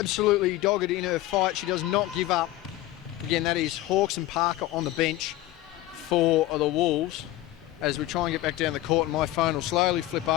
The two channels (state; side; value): quieter; right; 15.6 dB